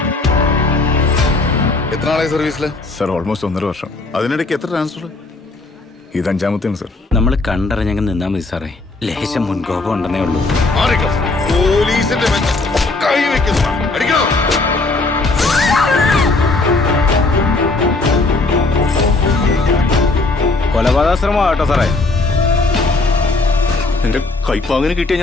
എത്ര നാളായി സർവീസില്? സർ ഓൾമോസ്റ്റ് 1.5 വർഷം. അതിനിടയ്ക്ക് എത്ര ട്രാൻസ്ഫർ? ഇത് 5ാമത്തെയാണ് സർ. നമ്മൾ കണ്ടറിഞ്ഞങ്ങ് നിന്നാ മതി സാറേ. ലേശം മുൻകോപം ഉണ്ടെന്നേ ഉള്ളൂ. പോലീസിന്റെ കൈ വെക്കുന്നു. അടിക്കണോ? കൊലപാതകശ്രമം ആട്ടോ സാറേ. എന്റെ കൈപ്പാങ്ങനെ കിട്ടിയാൽ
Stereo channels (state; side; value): quieter; right; 3.4 dB